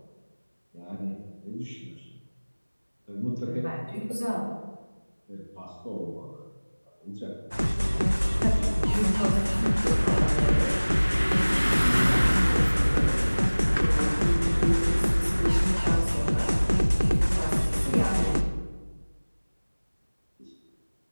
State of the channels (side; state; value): both; inverted; correlation -1.00